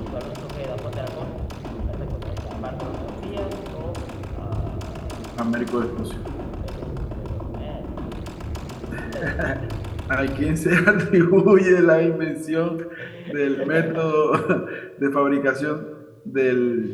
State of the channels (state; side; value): identical; both; correlation 1.00